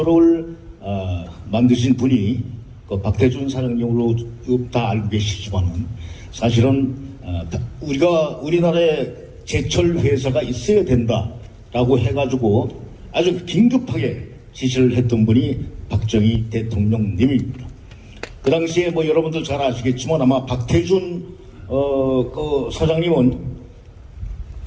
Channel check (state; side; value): identical; both; correlation 1.00